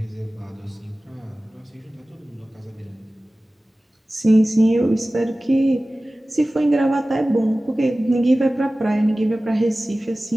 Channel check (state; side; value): normal; both; correlation 0.97